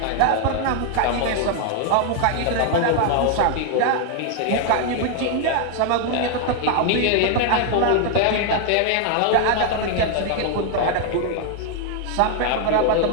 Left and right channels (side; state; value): both; different; correlation 0.00